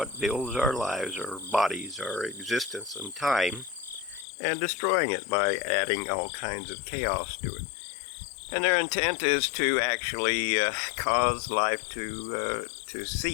builds our lives, our bodies, our existence and time, and destroying it by adding all kinds of chaos to it. And their intent is to actually cause life to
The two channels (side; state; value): right; drops out; at 4.2 s